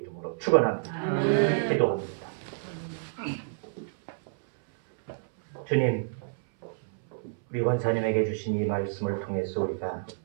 이름으로 축원합니다. 기도합니다. 주님, 우리 권사님에게 주신 이 말씀을 통해서 우리가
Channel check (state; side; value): silent; left; 59 dB below the other